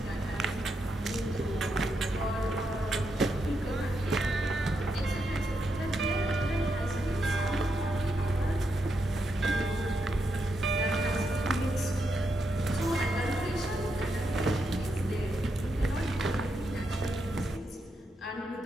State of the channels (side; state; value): both; normal; correlation 0.83